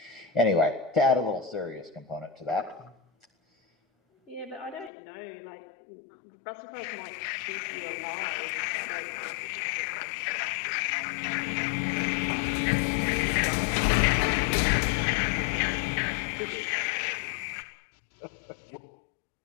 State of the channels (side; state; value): right; drops out; at 4.9 s